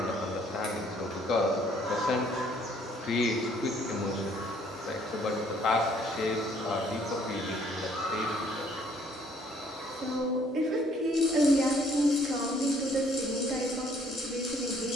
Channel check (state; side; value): normal; both; correlation 0.62